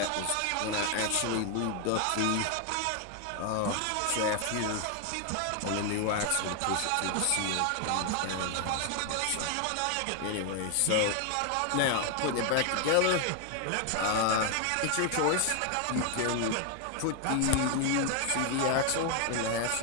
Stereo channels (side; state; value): both; different; correlation 0.01